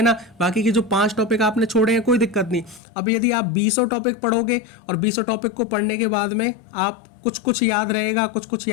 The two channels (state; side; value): drops out; right; at 2.8 s